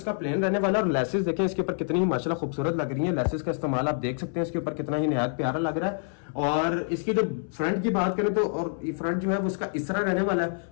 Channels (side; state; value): right; silent; 59 dB below the other